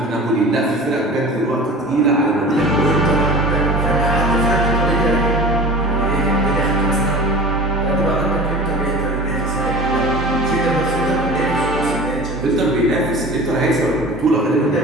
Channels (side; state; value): both; normal; correlation 0.37